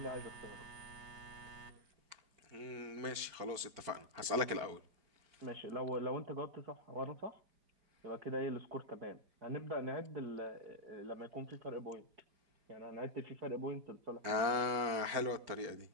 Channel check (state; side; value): late; left; 4.5 ms